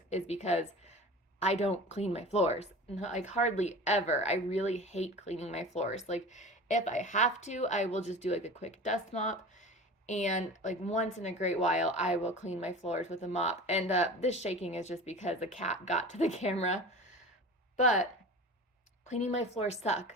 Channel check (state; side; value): normal; both; correlation 0.36